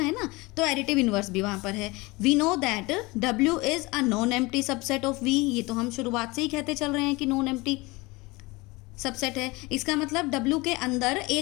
ना, तो एडिटिव इनवर्स भी वहाँ पर है। We know that W is a non empty subset of V, ये तो हम शुरुआत से ही कहते चल रहे हैं कि नॉन एम्प्टी सबसेट है। इसका मतलब W के अंदर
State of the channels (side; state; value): right; quieter; 23.5 dB